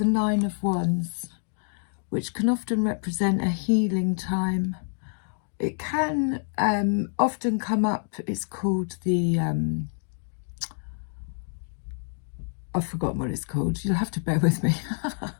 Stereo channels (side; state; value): right; silent; 60 dB below the other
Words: 9 of Wands, which can often represent a healing time. It can often come up, it's called the, I've forgotten what it's called, you'll have to bear with me.